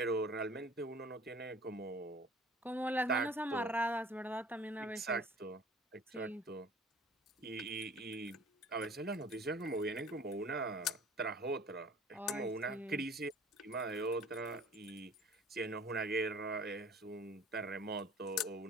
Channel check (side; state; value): both; normal; correlation 0.48